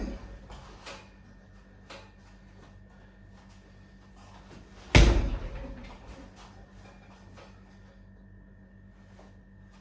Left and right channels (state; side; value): identical; both; correlation 1.00